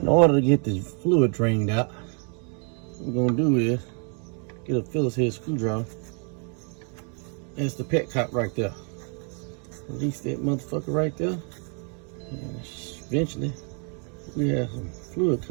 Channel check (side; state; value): left; quieter; 39.8 dB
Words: order to get this fluid drained out, what we're gonna do is get a Phillips head screwdriver. That's the petcock right there. Release that motherfucker right there. And eventually we have some fluid